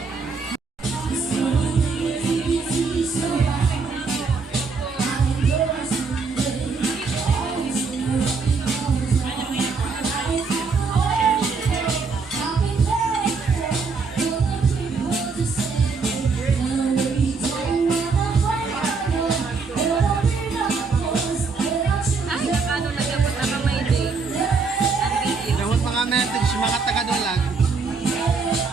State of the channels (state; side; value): quieter; left; 4.7 dB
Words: Dapat mga message, mga taga-Dulag.